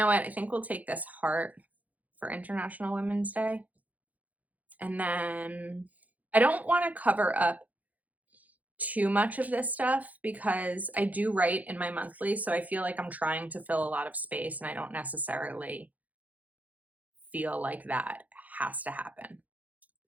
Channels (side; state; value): left; late; 0.077 ms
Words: what? I think we'll take this heart for International Women's Day. And then I don't want to cover up too much of this stuff because I do write in my monthly, so I feel like I'm trying to fill a lot of space and I don't necessarily feel like that has to happen.